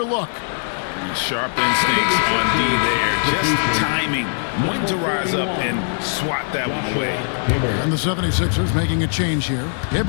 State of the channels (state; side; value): silent; right; digital silence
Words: look. Sharp instincts on D there. Just timing when to rise up and swat that one away. And the 76ers making a change here.